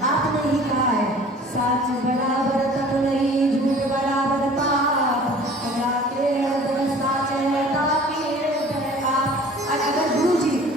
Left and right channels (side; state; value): both; normal; correlation 0.47